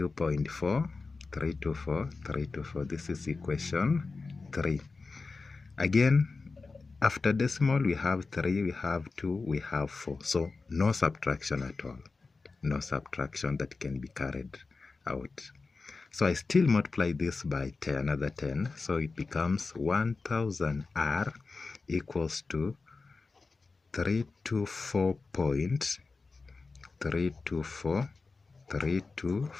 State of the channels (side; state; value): right; quieter; 4.1 dB